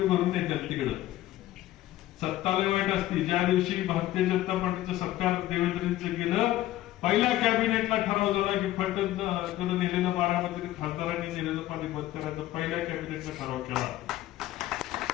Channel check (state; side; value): quieter; right; 15.0 dB